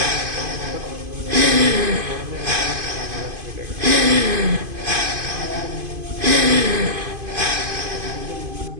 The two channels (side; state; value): left; late; 2.5 ms